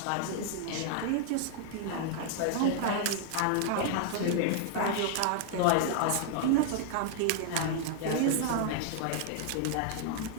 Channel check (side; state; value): both; different; correlation -0.01